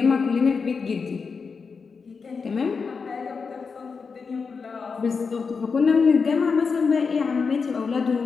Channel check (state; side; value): quieter; right; 5.2 dB